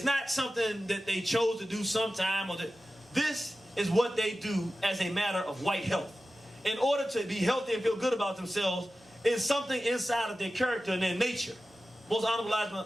not something that they chose to do sometime. This is what they do as a matter of white health. In order to be healthy and feel good about themselves, is something inside of their character and their nature. Most Honorable Elijah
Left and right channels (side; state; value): both; normal; correlation 0.94